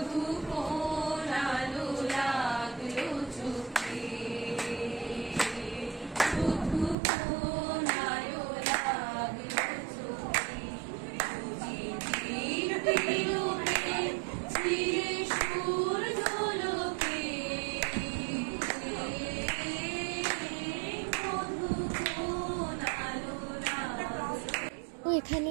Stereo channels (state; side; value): drops out; left; at 7.0 s